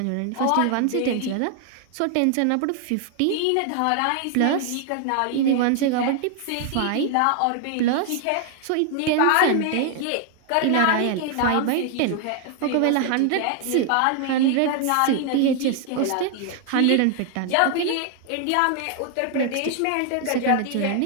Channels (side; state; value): both; different; correlation 0.00